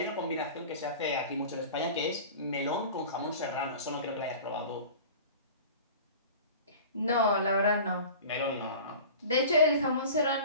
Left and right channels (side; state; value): both; inverted; correlation -0.39